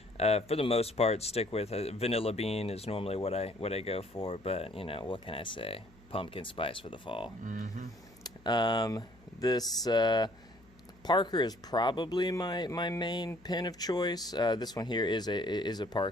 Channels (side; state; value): left; noise; hum, 27 dB below the sound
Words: for the most part stick with vanilla bean is normally what I go for, but you know, what can I say? Pumpkin spice for the fall. This Parker is probably my main pen of choice. This one here is a